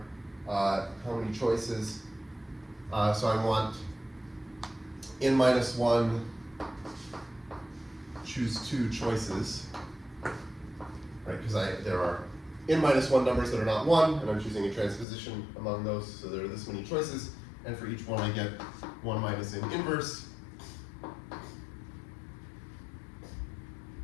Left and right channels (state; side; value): drops out; right; at 15.1 s